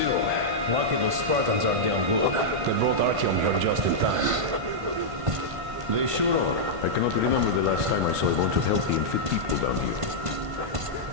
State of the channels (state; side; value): late; left; 1.5 ms